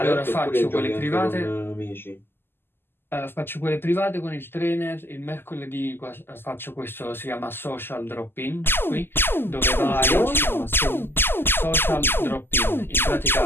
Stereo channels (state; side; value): late; right; 0.11 ms